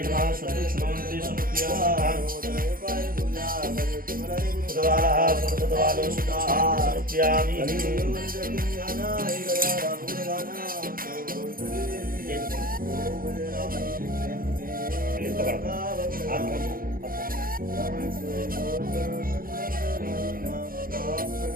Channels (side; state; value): left; late; 0.42 ms